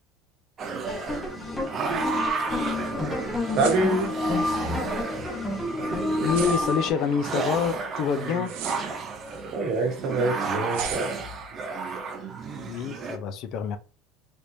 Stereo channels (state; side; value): normal; both; correlation 0.52